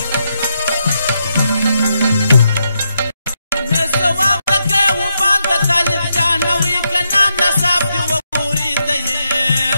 نه ثواب لکه وبال د طالب جانه وي که نام نصاب دې وګوري ته یې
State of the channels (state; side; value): inverted; both; correlation -0.81